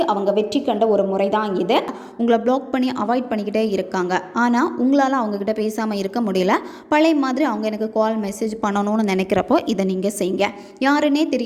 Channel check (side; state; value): both; identical; correlation 1.00